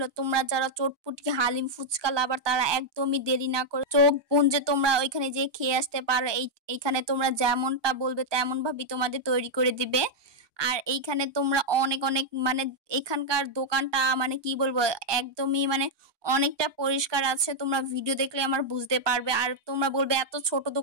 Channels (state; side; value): late; left; 1.2 ms